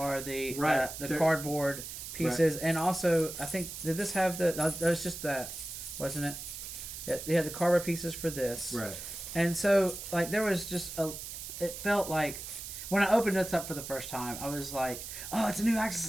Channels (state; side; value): noise; right; hiss, 9 dB below the sound